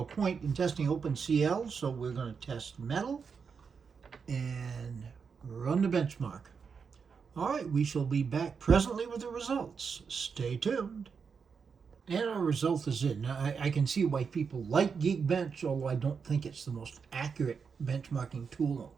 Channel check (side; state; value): left; quieter; 5.9 dB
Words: point in testing OpenCL, so we're going to test Metal and run the benchmark. All right, we shall be back presently with the results. Stay tuned. And our result is in. Now, I can see why people like Geekbench, although I don't think it's the most accurate benchmarking tool